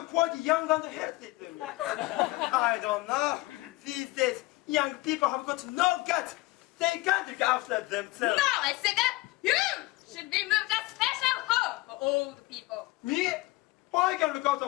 quite young and healthy to me. I don't know. These days, young people have got no guts. They can't look after themselves. No, I said that you should be moved to a special home for old people. Me? I can look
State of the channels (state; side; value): quieter; right; 21.2 dB